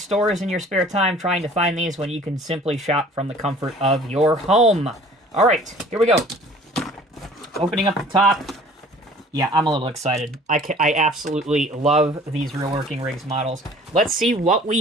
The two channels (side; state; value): both; normal; correlation 0.50